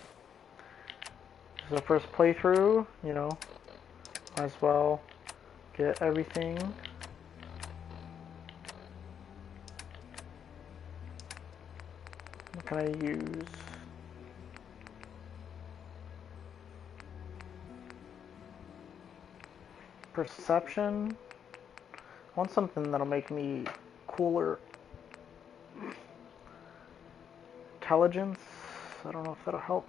This is the first playthrough, you know. Might as well get everything. What can I use? Perception. I want something that'll make me cooler. Intelligence. I don't know if that'll help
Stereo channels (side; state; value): right; quieter; 8.1 dB